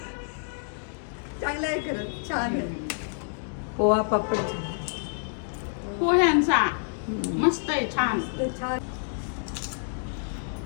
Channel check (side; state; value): right; silent; digital silence